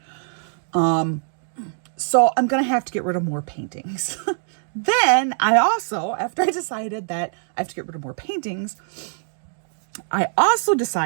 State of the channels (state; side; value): silent; left; digital silence